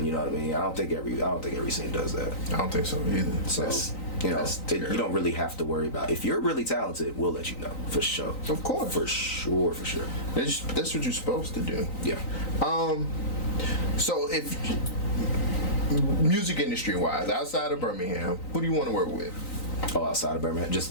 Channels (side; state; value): right; late; 3.9 ms